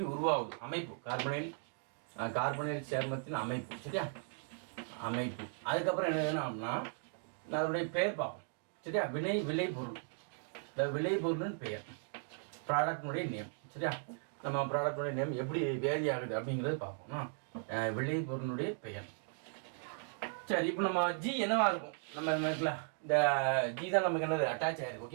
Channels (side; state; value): left; silent; 53 dB below the other